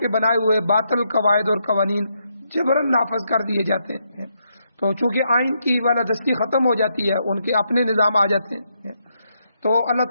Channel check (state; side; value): inverted; both; correlation -0.78